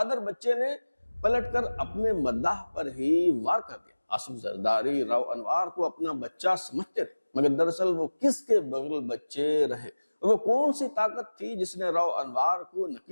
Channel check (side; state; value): both; inverted; correlation -1.00